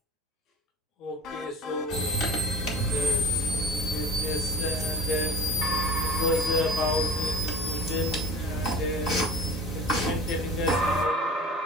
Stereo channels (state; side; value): normal; both; correlation 0.40